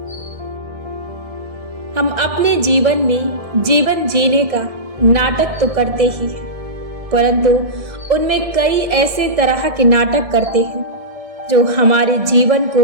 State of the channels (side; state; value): left; late; 1.7 ms